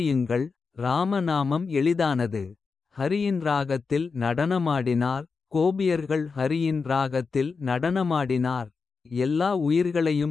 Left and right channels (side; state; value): right; quieter; 4.9 dB